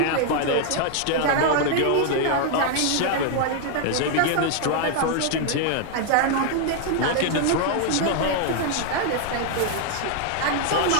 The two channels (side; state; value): both; different; correlation 0.00